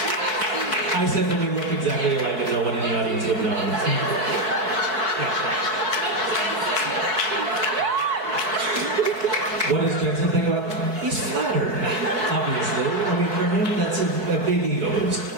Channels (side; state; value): left; late; 4.7 ms